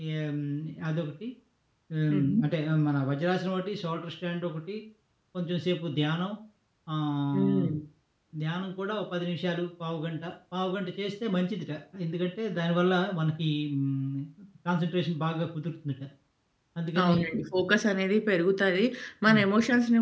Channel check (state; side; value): identical; both; correlation 1.00